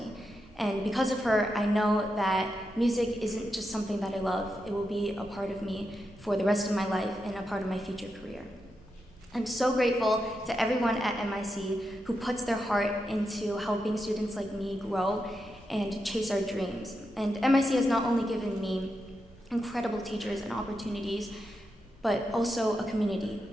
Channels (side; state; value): both; normal; correlation 0.86